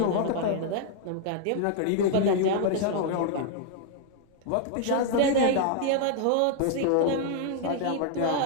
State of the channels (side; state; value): both; different; correlation 0.00